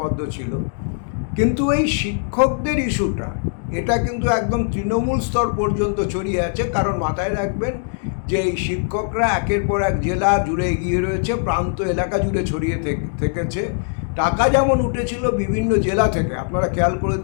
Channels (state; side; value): silent; right; digital silence